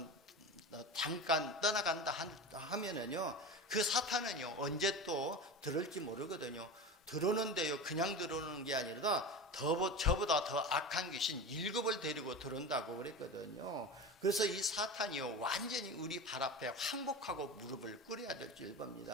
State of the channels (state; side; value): normal; both; correlation 0.28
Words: 잠깐 떠나간다 하면은요, 그 사탄은요 언제 또 들을지 모르거든요. 들어오는데요, 그냥 들어오는 게 아니라 저보다 더 악한 귀신 7을 데리고 들어온다고 그랬거든요. 그래서 이 사탄이요 완전히 우리 발 앞에 항복하고 무릎을 꿇어야 될 줄